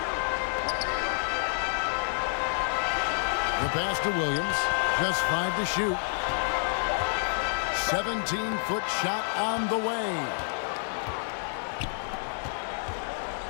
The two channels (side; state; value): right; silent; digital silence